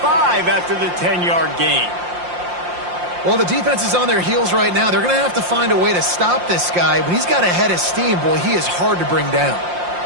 after the 10-yard gain. Well, the defense is on their heels right now. They're going to have to find a way to stop this guy. When he's got a head of steam, boy, he is hard to bring down.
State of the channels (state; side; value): late; left; 5.7 ms